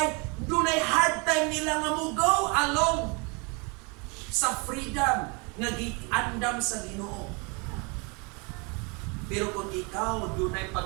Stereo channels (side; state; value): left; quieter; 31.4 dB